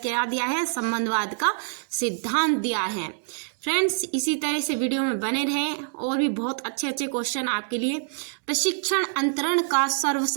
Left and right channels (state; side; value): silent; left; digital silence